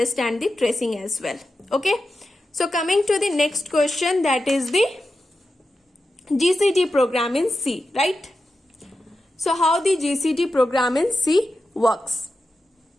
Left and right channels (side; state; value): both; normal; correlation 0.91